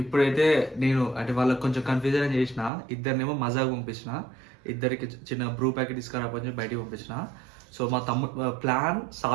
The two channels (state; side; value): drops out; left; at 2.7 s